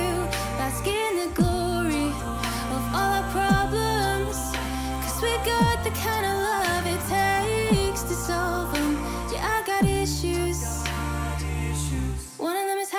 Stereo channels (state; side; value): identical; both; correlation 1.00